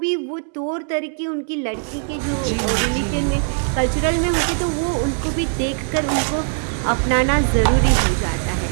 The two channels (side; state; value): left; silent; 65 dB below the other